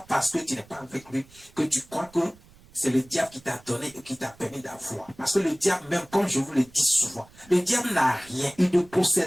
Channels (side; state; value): right; noise; rumble, 26 dB below the sound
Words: parce que tu n'es pas avec lui que tu crois que c'est le diable qui t'a donné et qui t'a permis d'avoir. Parce que le diable, même comme je vous le dis souvent, le diable n'a rien, il ne